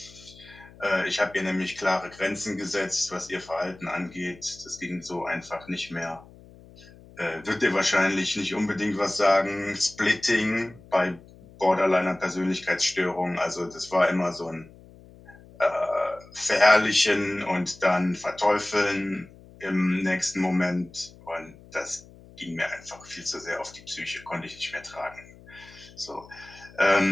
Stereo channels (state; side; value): noise; left; hum, 22 dB below the sound